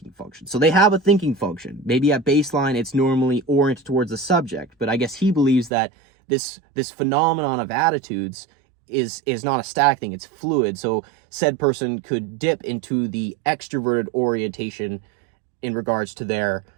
function. So they have a thinking function. Maybe at baseline, it's normally oriented towards the subject, but I guess he believes that this phenomenon of attitudes is not a static thing, it's fluid. So said person could dip into the extroverted orientation in regards to their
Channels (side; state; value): left; drops out; at 5.7 s